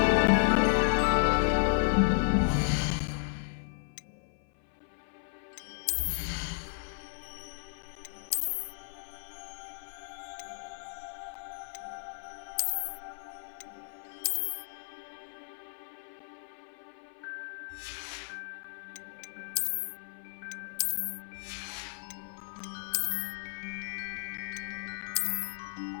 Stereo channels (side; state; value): right; silent; 55 dB below the other